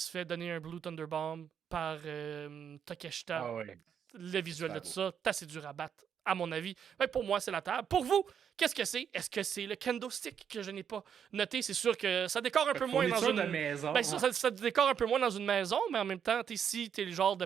fait donner un Blue Thunder Bomb par Takeshita. Le visuel de tout ça, c'est assez dur à battre, à mon avis. Mais pour moi, c'est la table. Pour vous, qu'est-ce que c'est? Est-ce que c'est le kendo stick que je n'ai pas noté? C'est sûr que ça décore un peu moins dans une maison. Ça décore un peu moins dans une maison, mais en même temps, si t'es le genre de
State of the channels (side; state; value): left; quieter; 8.0 dB